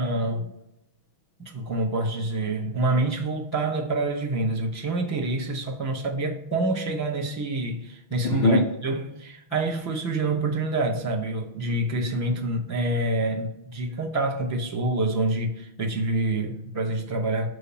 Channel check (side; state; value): right; late; 5.9 ms